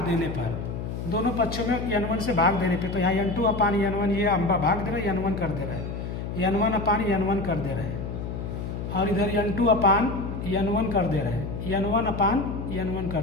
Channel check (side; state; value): left; noise; hum, 5 dB below the sound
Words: देने पर, दोनों पक्षों में n1 से भाग देने पे, तो यहाँ n2 अपान n1 ये हम भाग दे रहे हैं, n1 कर दे रहे हैं, n1 अपान n1 कर दे रहे हैं, और इधर n2 अपान n1 कर दे रहे हैं, n1 अपान n1